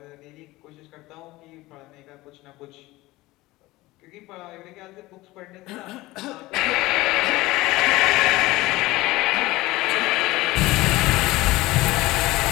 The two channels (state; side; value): quieter; right; 19.3 dB